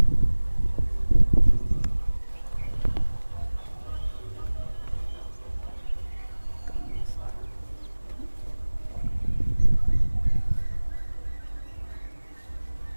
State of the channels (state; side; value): inverted; both; correlation -1.00